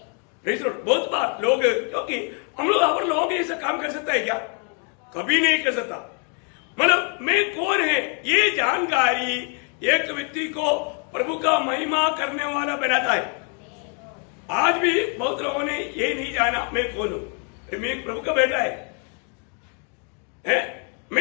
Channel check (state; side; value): quieter; right; 39.6 dB